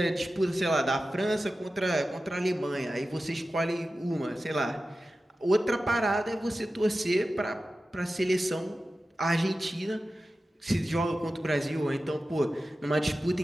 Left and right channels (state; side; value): normal; both; correlation 0.94